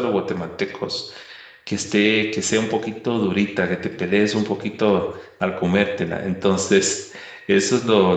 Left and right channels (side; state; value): both; identical; correlation 1.00